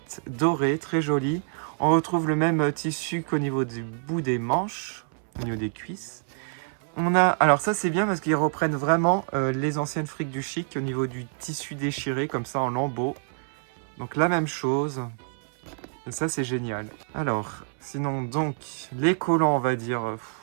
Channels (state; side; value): silent; left; 58 dB below the other